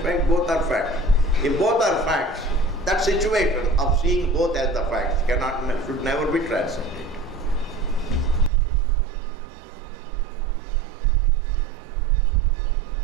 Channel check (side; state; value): left; drops out; at 8.5 s